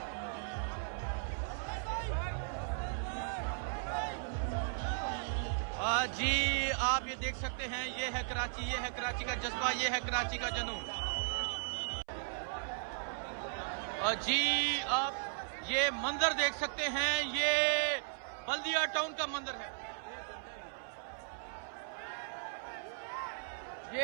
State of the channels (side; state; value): left; silent; 53 dB below the other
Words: जी आप ये देख सकते हैं, ये है कराची, ये है कराची का जज्बा, ये है कराची का जुनून। जी आप ये मंजर देख सकते हैं, ये बल्दिया टाउन का मंजर है।